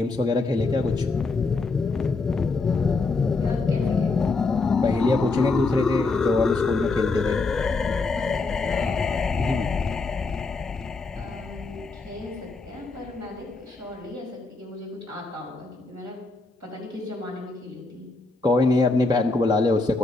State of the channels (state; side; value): quieter; right; 3.7 dB